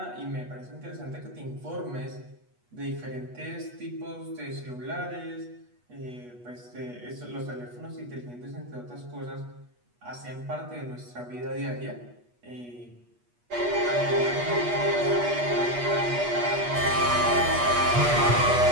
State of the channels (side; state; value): left; late; 8.3 ms